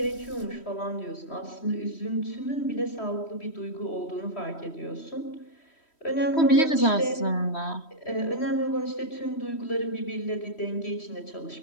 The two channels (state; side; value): late; right; 3.1 ms